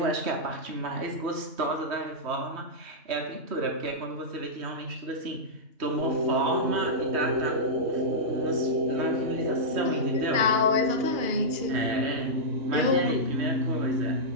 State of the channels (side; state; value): left; late; 3.1 ms